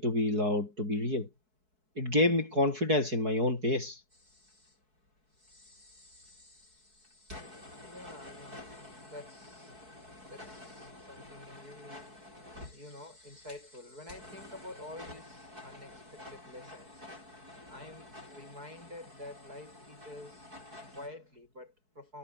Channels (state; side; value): late; left; 4.6 ms